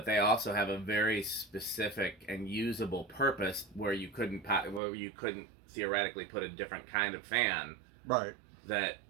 they also have a very specific and usable purpose where you couldn't theoretically put a different kind of fan Right. that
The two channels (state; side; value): drops out; left; at 4.8 s